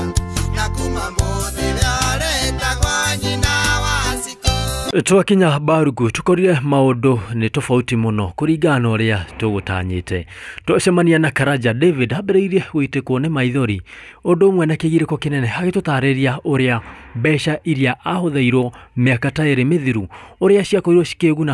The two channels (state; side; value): identical; both; correlation 1.00